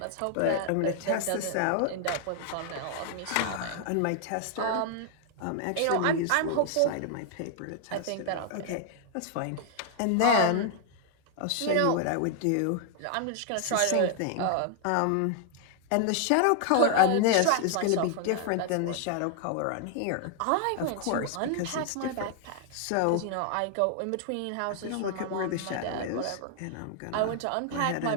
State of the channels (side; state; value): both; different; correlation 0.00